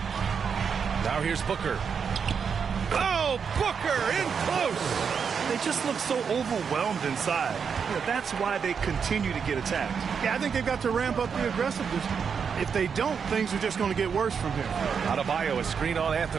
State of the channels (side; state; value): left; quieter; 6.5 dB